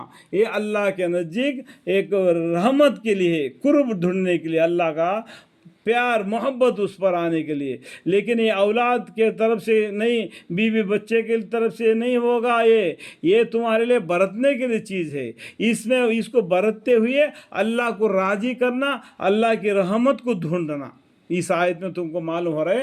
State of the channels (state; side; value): identical; both; correlation 1.00